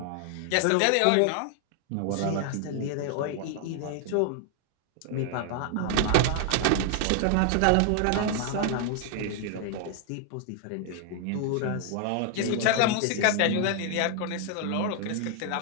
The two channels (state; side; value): different; both; correlation 0.00